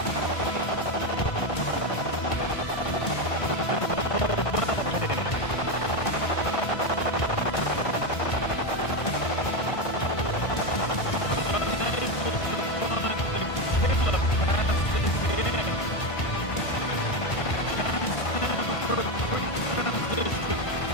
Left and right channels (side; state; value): right; late; 1.5 ms